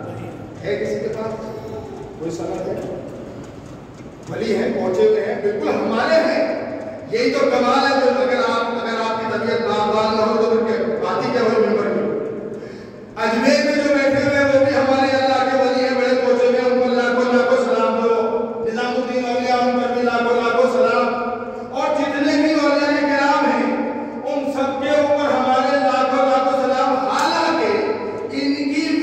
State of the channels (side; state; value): both; identical; correlation 1.00